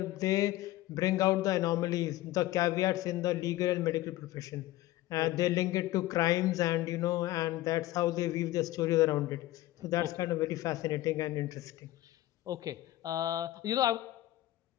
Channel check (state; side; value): quieter; right; 16.2 dB